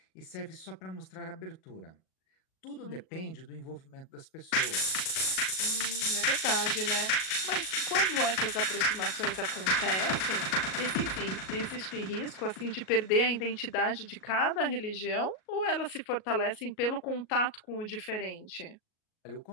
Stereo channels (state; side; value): late; right; 38 ms